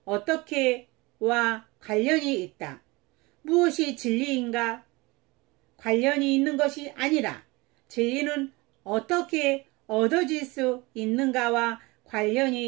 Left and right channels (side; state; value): left; quieter; 24.0 dB